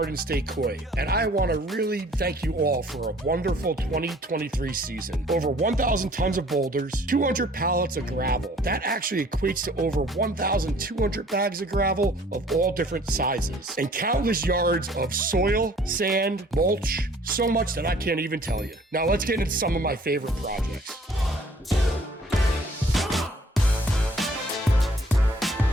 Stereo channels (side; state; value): both; normal; correlation 0.55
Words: State Koi, and I want to really thank you all for a wonderful 2023 season. Over 1,000 tons of boulders, 200 pallets of gravel. That actually equates to over 1,200 bags of gravel of all different sizes, and countless yards of soil, sand, mulch, so much that I can't even tell you. Now let's get into some of my favorite projects.